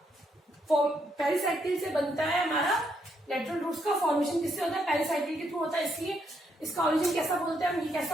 पेरिसाइकिल से बनता है हमारा लेटरल रूट्स का फॉर्मेशन किससे होता है, पेरिसाइकिल के थ्रू होता है। इसलिए इसका ओरिजिन कैसा बोलते हैं हम, ये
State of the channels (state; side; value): normal; both; correlation 0.76